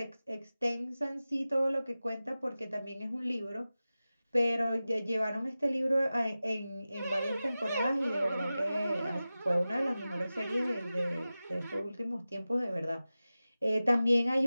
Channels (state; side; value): inverted; both; correlation -0.95